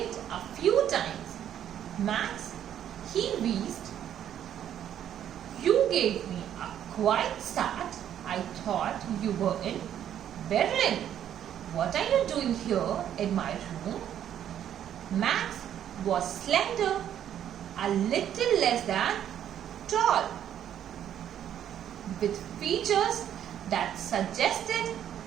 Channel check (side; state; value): left; quieter; 10.2 dB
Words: a few times. Max, he wheezed. You gave me a quiet start. I thought you were in Berlin. What are you doing here in my room? Max was slender, a little less than tall, with features that suggested